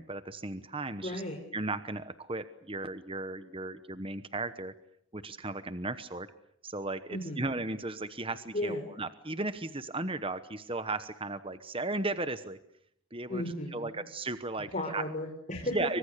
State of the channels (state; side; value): normal; both; correlation 0.25